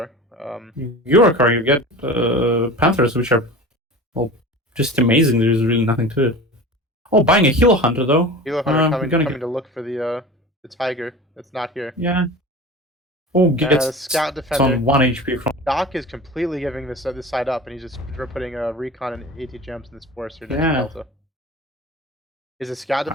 Eurocorps, you get Panthers, which are, well, just amazing. There's really nothing to it. Oh, buying a Hilo Hunter, though. Hilo Hunter coming to look for the Tiger that's not here. Yeah. Oh, gets Scout Defender. on 1 HP from... Dokk is completely giving this side up, and he's just putting recon and AT gems in this forest here next to Delta. Is the Scout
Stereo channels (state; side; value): normal; both; correlation 0.35